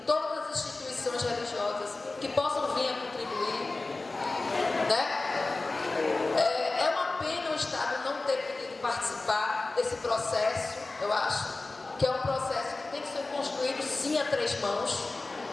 as instituições religiosas que possam vir a contribuir, né? É uma pena o Estado não ter podido participar desse processo. Eu acho que é um processo que tem que ser construído sim a três mãos,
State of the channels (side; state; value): right; quieter; 3.3 dB